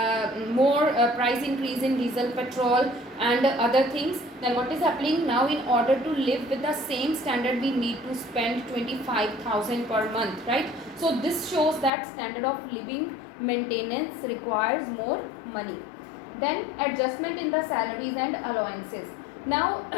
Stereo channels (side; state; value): right; drops out; at 11.9 s